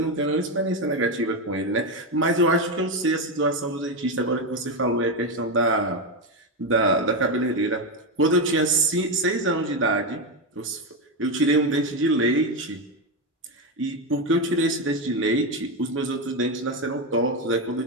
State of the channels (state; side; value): normal; both; correlation 0.10